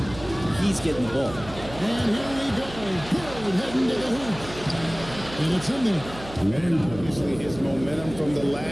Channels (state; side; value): noise; right; hum, 14 dB below the sound